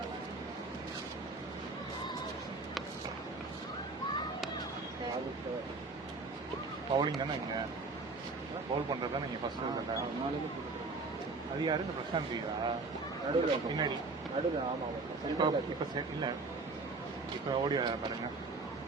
பவுலிங் தானே இங்கே பவுல் பண்ணுறது தான் நீங்கள் ஃபஸ்ட்டு இருக்கல. அது யாரு இந்த பிரசாந்த் தீரா நடுவில் பின்னாடி நடுவில். ஆமாம் இப்போ இப்போ இல்லை இப்போ ஓடி வர பாருங்க.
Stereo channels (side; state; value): left; quieter; 3.8 dB